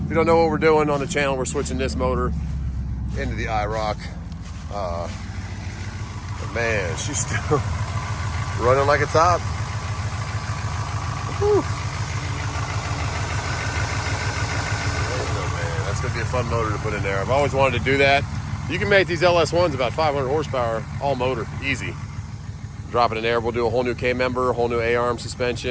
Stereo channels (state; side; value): identical; both; correlation 1.00